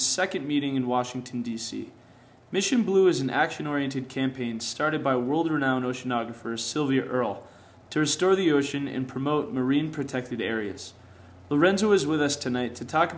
second meeting in Washington, D.C. Mission Blue is an action-oriented campaign started by world-renowned oceanographer Sylvia Earle to restore the ocean and promote marine protected areas. Lorenzo is with us tonight to talk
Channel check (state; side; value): identical; both; correlation 1.00